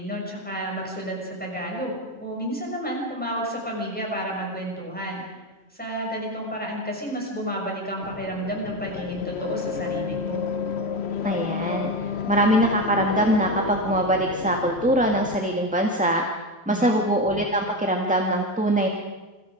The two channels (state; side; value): normal; both; correlation 0.16